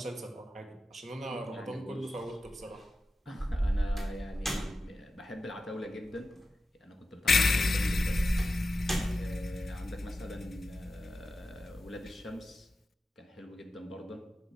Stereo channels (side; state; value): both; normal; correlation 0.93